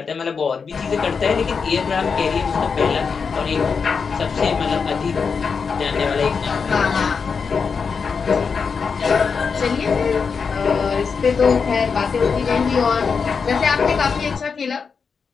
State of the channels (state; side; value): quieter; right; 5.6 dB